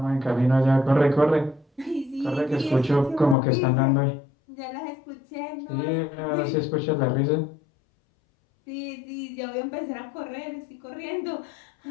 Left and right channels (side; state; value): right; drops out; at 3.4 s